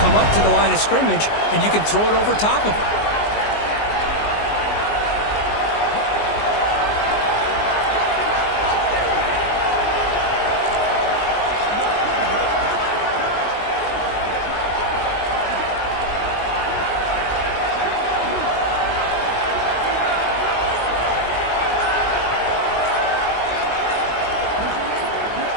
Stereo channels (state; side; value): late; right; 19 ms